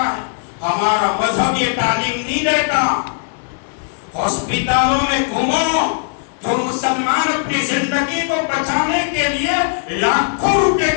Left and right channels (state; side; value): silent; right; 57 dB below the other